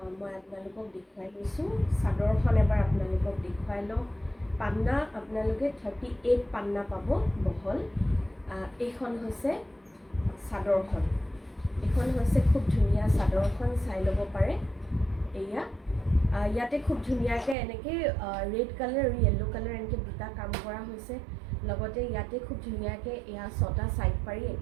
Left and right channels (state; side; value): drops out; left; at 17.6 s